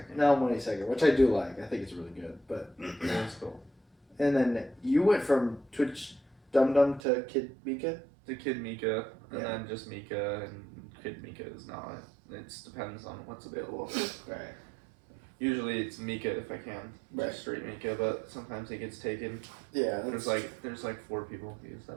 Now I'm 22nd, which I do like. I think it's really good. But That's cool. and then you went from Twitch Dum Dum to Kid Mika. The Kid Mika, and Yeah. then just Mika, and Kid Mika is not. It depends on what's available. Right. Usually it's Mika if I can, Right. just straight Mika, but sometimes it gets taken. Yeah. There's like 4 people who use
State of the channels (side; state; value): left; drops out; at 7.0 s